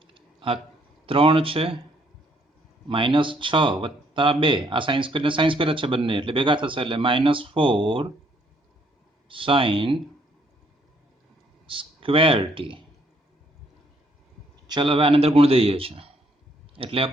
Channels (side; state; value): both; normal; correlation 0.68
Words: આ 3 છે -6 વત્તા 2. આ સાઇન સ્ક્વેર ને સાઇન સ્ક્વેર જ છે બંને એટલે ભેગા થશે એટલે -4 sin સ્ક્વેર t. ચલો હવે આની અંદર ગુણ દઈએ છીએ એટલે